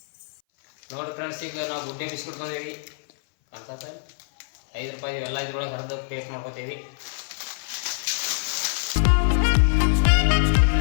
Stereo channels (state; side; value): silent; right; 59 dB below the other